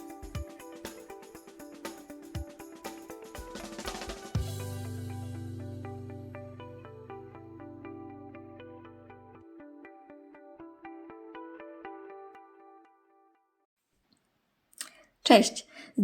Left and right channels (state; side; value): identical; both; correlation 1.00